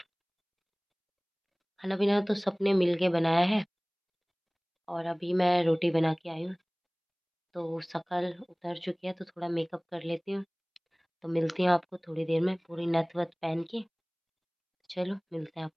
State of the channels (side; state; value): both; identical; correlation 1.00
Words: खाना पीना तो सबने मिल के बनाया है। और अभी मैं रोटी बना के आई हूँ, तो शक्ल उतर चुकी है, तो थोड़ा मेकअप कर लेती हूँ। तो मिलती हूँ आपको थोड़ी देर में पूरी नथ वथ पहन के। चलो मिलते हैं